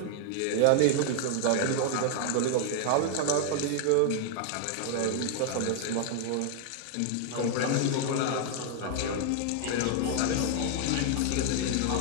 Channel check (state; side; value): different; both; correlation 0.00